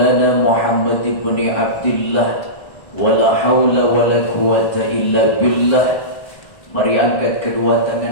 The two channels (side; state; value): right; late; 1.6 ms